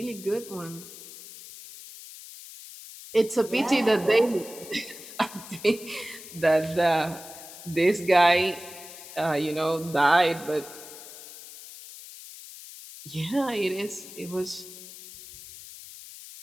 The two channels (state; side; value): noise; left; hiss, 15 dB below the sound